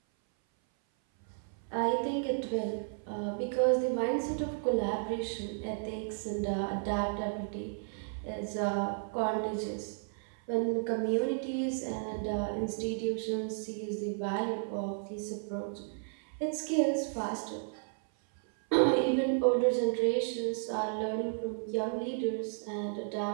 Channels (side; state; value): left; silent; 56 dB below the other